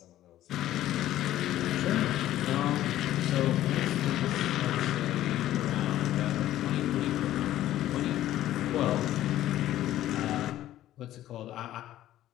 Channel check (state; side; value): quieter; right; 13.5 dB